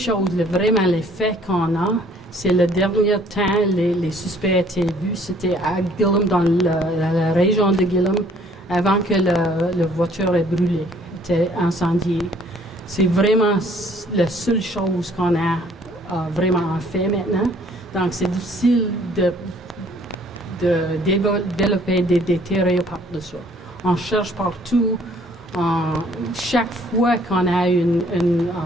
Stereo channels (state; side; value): normal; both; correlation 0.59